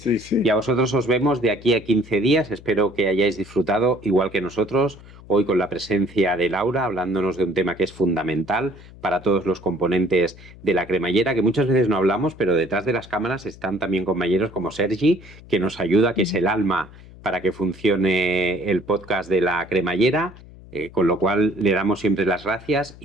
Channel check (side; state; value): left; noise; hum, 20 dB below the sound